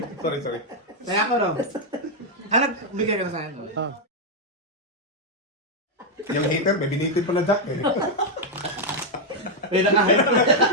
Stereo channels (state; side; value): normal; both; correlation 0.00